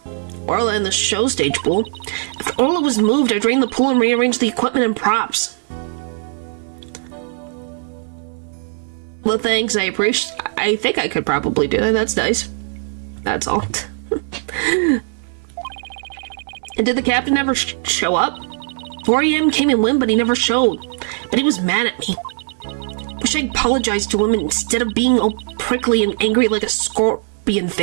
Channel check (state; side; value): silent; left; 66 dB below the other